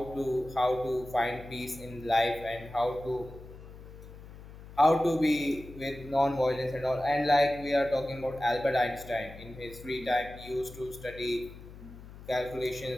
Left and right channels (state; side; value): noise; left; hum, 16 dB below the sound